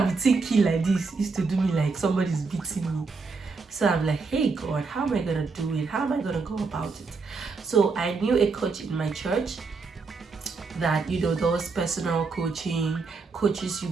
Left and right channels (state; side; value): quieter; left; 4.4 dB